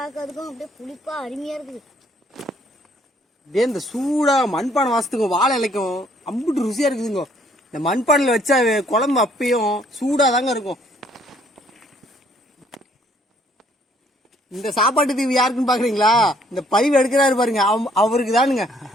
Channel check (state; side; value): normal; both; correlation 0.64